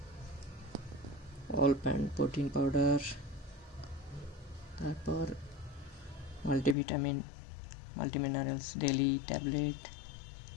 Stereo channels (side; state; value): right; drops out; at 6.8 s